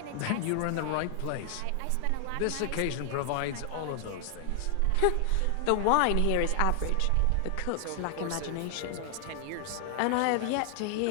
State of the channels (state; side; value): different; both; correlation 0.00